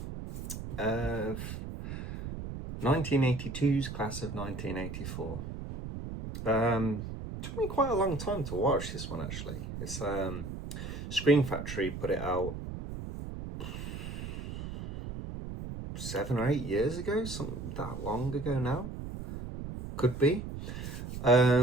of 1982's class of 1984. Took me quite a long time to watch this one, actually. It's Screen Factory put it out 7 or 8 years ago, something that long ago now. Could be.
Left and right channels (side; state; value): right; noise; rumble, 7 dB below the sound